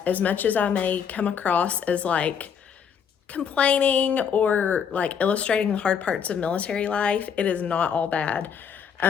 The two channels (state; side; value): quieter; right; 7.4 dB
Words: as much as I may come across as like complaining or like illustrating the hard parts of military life, it is not all bad.